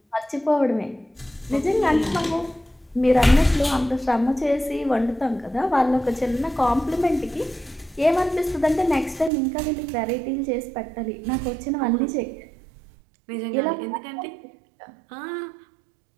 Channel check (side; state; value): left; drops out; at 9.3 s